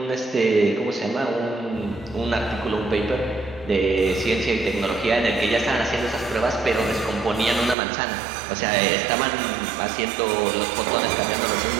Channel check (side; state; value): left; drops out; at 7.8 s